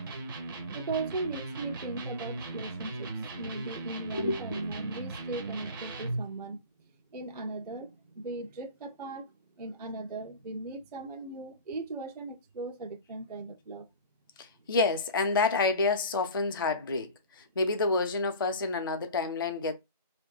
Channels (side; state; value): both; inverted; correlation -0.35